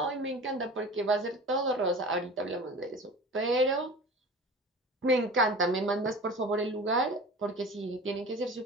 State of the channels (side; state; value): both; normal; correlation 0.38